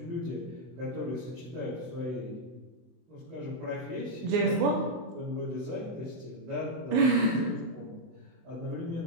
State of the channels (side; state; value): left; late; 24 ms